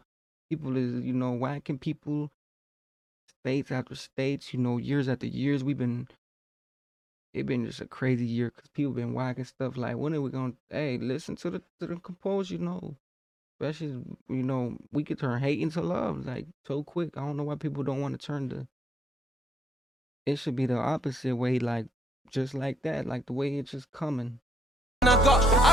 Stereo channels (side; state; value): both; normal; correlation 0.83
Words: is whacking people states after states. Years after years. It been just a crazy year because people been whacking stuff. Like when are we gonna? Hey, listen to the compose. Especially we could turn hate into love like so quick. I don't know why people don't want to turn the. It should be the opposite way. Like just like that. Like the way it's just coming.